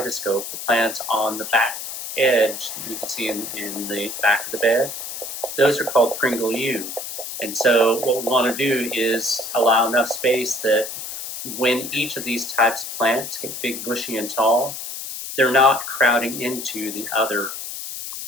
the plants on the back edge that you can see in the back of the bed. Those are called Pringle U. And so what we want to do is allow enough space that when each of these types of plants get big, bushy, and tall, they're not crowding into the other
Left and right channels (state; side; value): noise; left; hiss, 8 dB below the sound